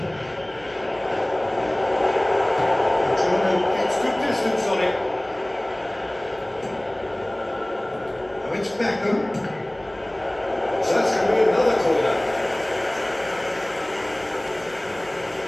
Jordan gets good distance on it. Now it's Beckham. So that's going to be another corner.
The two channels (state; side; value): noise; left; hum, 29 dB below the sound